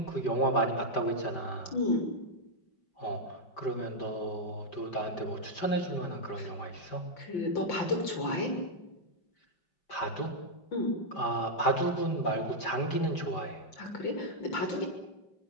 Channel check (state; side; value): late; right; 5.1 ms